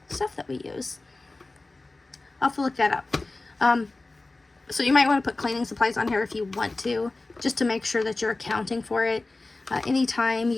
stuff that we use. I'll have to look that up. So you might want to put cleaning supplies on here if you want to, just to make sure that you're accounting for it. Anytime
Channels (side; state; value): right; quieter; 3.2 dB